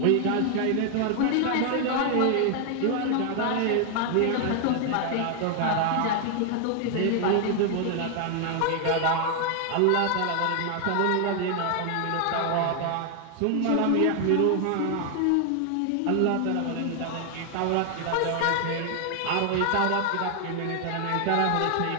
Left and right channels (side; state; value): both; different; correlation 0.00